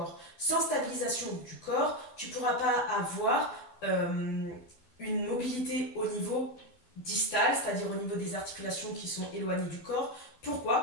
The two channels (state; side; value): late; right; 12 ms